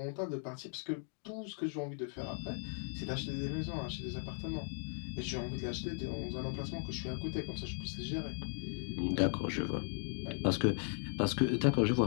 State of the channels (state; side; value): silent; right; 53 dB below the other